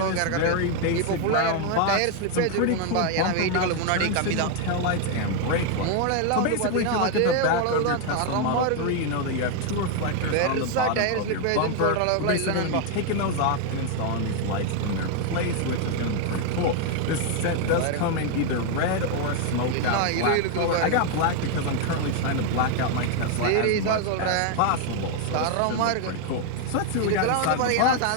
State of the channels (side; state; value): both; different; correlation 0.01